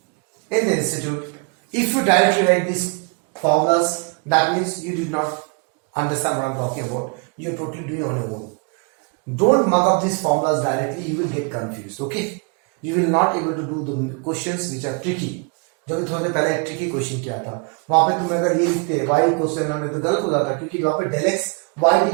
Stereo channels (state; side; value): quieter; left; 34.2 dB